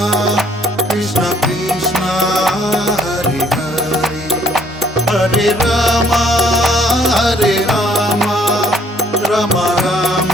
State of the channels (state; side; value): normal; both; correlation 0.63